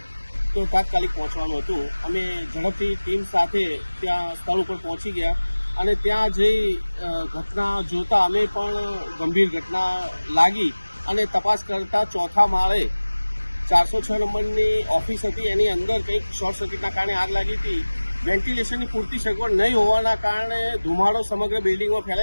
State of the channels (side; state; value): both; inverted; correlation -1.00